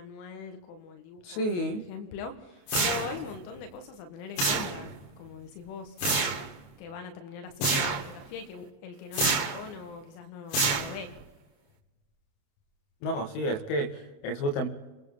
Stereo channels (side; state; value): right; late; 28 ms